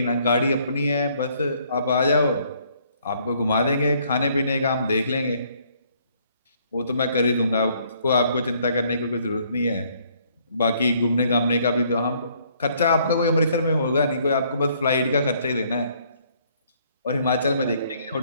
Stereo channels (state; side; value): inverted; both; correlation -0.65